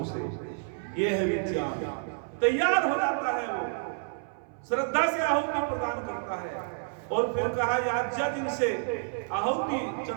से। यह है विज्ञान। तैयार हो जाता है, वो श्रद्धा से आहुति प्रदान करता है। और फिर कहा याज्ञा दिन से आहुति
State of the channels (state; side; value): silent; left; 58 dB below the other